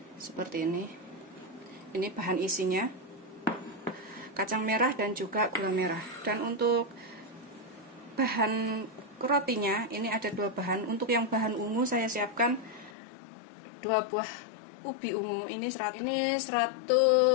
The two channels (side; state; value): right; drops out; at 13.0 s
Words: Seperti ini. Ini bahan isinya. Kacang merah dan juga gula merah. Dan untuk bahan rotinya, ini ada dua bahan. Untuk yang bahan ungu saya siapkan 2 buah ubi ungu. Ini 180